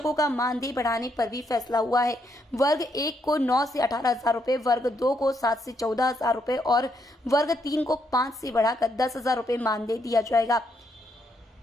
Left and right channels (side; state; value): both; normal; correlation 0.76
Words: का मानदेय बढ़ाने पर भी फैसला हुआ है। वर्ग 1 को 9 से 18,000 रुपए, वर्ग 2 को 7 से 14,000 रुपए और वर्ग 3 को 5 से बढ़ाकर 10,000 रुपए मानदेय दिया जाएगा।